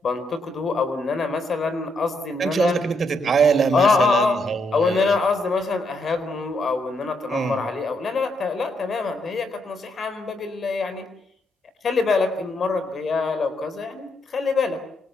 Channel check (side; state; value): both; normal; correlation 0.76